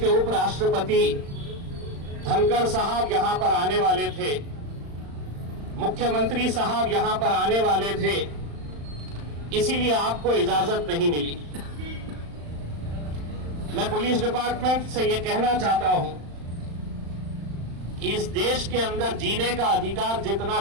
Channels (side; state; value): left; late; 35 ms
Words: उपराष्ट्रपति धनखड़ साहब यहां पर आने वाले थे, मुख्यमंत्री साहब यहां पर आने वाले थे, इसीलिए आपको इजाजत नहीं मिली। मैं पुलिस डिपार्टमेंट से यह कहना चाहता हूं, इस देश के अंदर जीने का अधिकार जितना